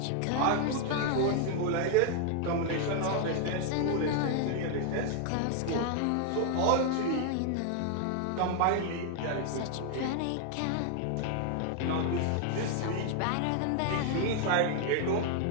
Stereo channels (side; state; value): both; different; correlation 0.00